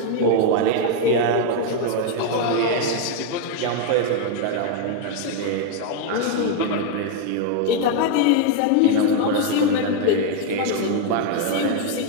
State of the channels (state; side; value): different; both; correlation 0.01